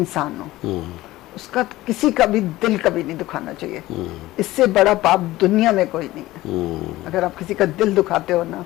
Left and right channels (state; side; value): quieter; right; 17.2 dB